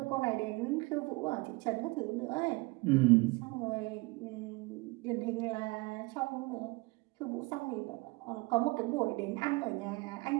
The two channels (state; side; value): quieter; left; 25.1 dB